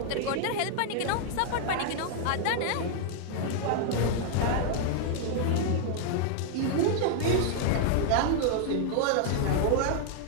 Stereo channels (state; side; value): different; both; correlation 0.00